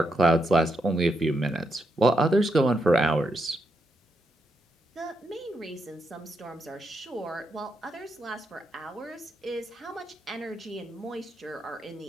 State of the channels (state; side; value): normal; both; correlation 0.82